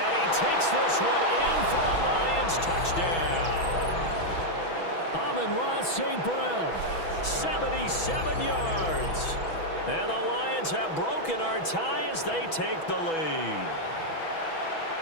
Takes this one in for a Lions touchdown. Amon-Ra St. Brown, 77 yards. And the Lions have broken our tie as they take the lead.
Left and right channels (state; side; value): late; right; 6.1 ms